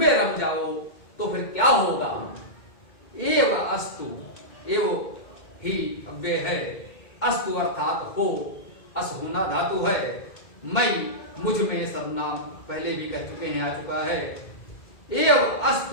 रम जाओ। तो फिर क्या होगा? एव अस्तु, एव ही अव्यय है, अस्तु अर्थात हो, अस होना धातु है, मई मुझ में सर्वनाम पहले भी कह चुके हैं, आ चुका है। एव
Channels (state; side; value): late; right; 2.1 ms